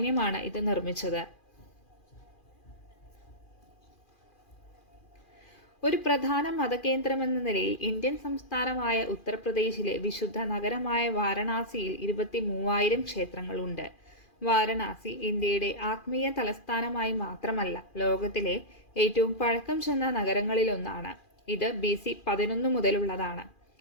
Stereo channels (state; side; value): late; right; 2.4 ms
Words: ഇത് നിർമ്മിച്ചത്. ഒരു പ്രധാന മതകേന്ദ്രമെന്ന നിലയിൽ ഇന്ത്യൻ സംസ്ഥാനമായ ഉത്തർപ്രദേശിലെ വിശുദ്ധ നഗരമായ വാരണാസിയിൽ 23,000 ക്ഷേത്രങ്ങളുണ്ട്. വാരണാസി ഇന്ത്യയുടെ ആത്മീയ തലസ്ഥാനമായി മാത്രമല്ല, ലോകത്തിലെ ഏറ്റവും പഴക്കം ചെന്ന നഗരങ്ങളിലൊന്നാണ്. ഇത് BC 11 മുതലുള്ളതാണ്.